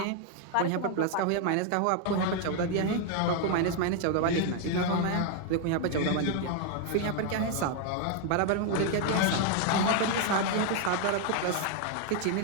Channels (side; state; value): both; different; correlation 0.00